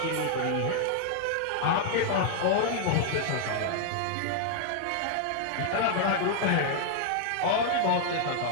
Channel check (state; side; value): different; both; correlation 0.00